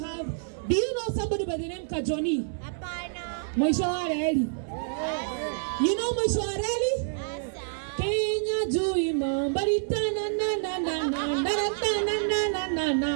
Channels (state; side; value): silent; left; digital silence